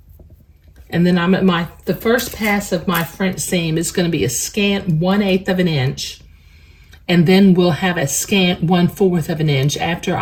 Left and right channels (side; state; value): both; identical; correlation 1.00